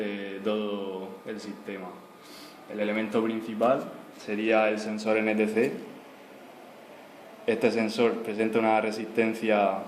todo el sistema. El elemento principal sería el sensor NTC. Este sensor presenta una resistencia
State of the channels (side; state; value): both; identical; correlation 1.00